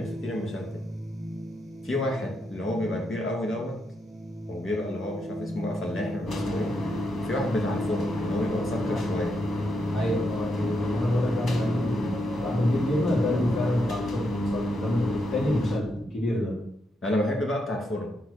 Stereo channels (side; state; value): both; normal; correlation 0.81